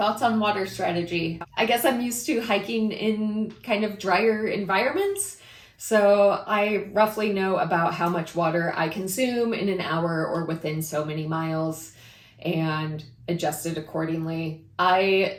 on water strategy? I guess I'm used to hiking in kind of drier environments, so I roughly know about how much water I consume in an hour or within so many miles and adjust it accordingly. I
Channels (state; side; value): identical; both; correlation 1.00